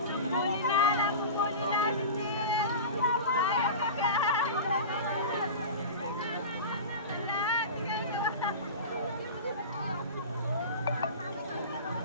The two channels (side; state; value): both; inverted; correlation -0.30